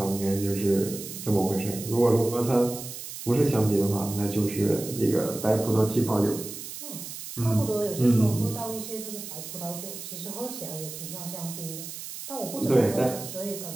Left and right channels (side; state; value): right; noise; hiss, 10 dB below the sound